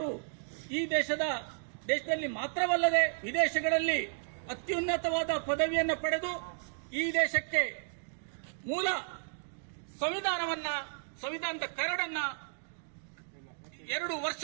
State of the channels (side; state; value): left; silent; digital silence